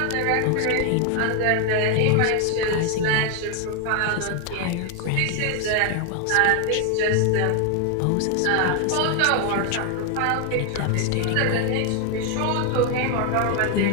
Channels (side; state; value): both; different; correlation 0.00